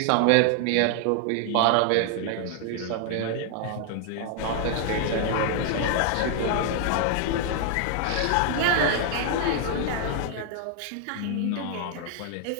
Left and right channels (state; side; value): different; both; correlation 0.00